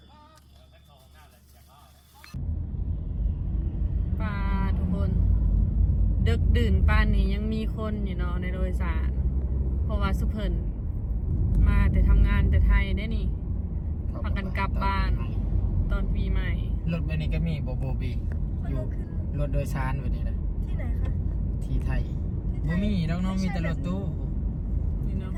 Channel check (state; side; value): identical; both; correlation 1.00